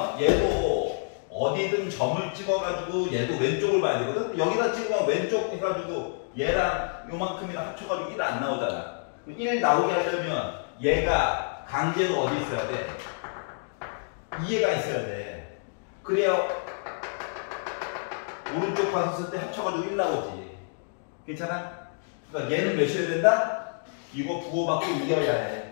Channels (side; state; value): right; silent; digital silence